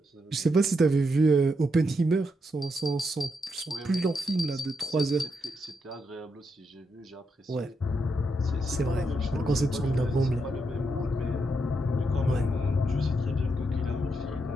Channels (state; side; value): normal; both; correlation 0.81